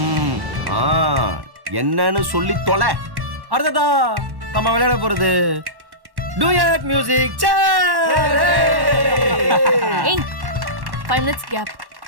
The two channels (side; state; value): left; late; 1.1 ms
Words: என்னன்னு சொல்லி தொலை. அடுத்ததா நம்ம விளையாட போறது டூயட் மியூசிக். ஏய் 5 minutes கேப்.